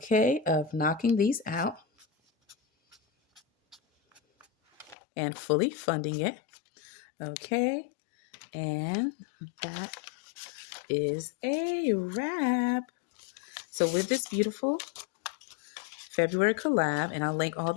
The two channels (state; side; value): drops out; right; at 5.0 s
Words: of knocking these out and fully funding it. Okay, and that is a wrap. So with this beautiful February collab, and I'll link all